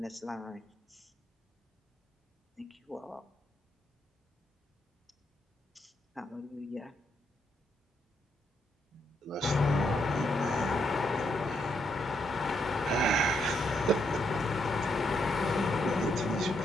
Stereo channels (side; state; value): both; normal; correlation 0.77